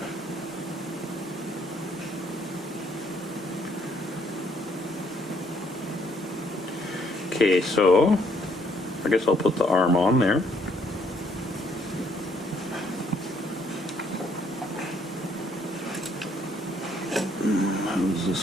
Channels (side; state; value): both; normal; correlation 0.68